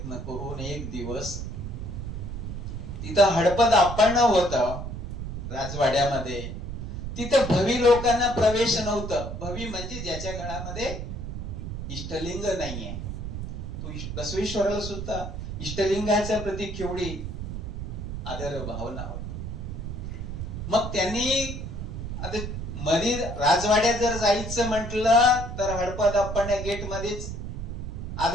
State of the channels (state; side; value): noise; right; rumble, 6 dB below the sound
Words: करून एक दिवस तिथं हडपद आपण होतं राजवाड्यामध्ये. तिथं भवी लोकांना प्रवेश नव्हतं. भवी म्हणजे ज्याच्या गळामध्ये इष्टलिंग नाहीये. तो बसवेश्वराला सुद्धा इष्टलिंगाच्या प्रती केवढी आदर भावना होती. मग त्यांनी आता मध्ये राजवाड्यात जर जायचं म्हटलं तर हडपद आपण गेट मध्येच